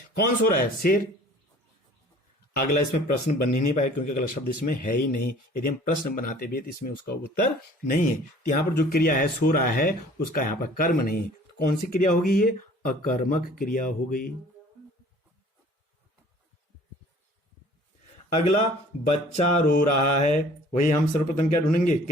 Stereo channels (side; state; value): both; normal; correlation 0.51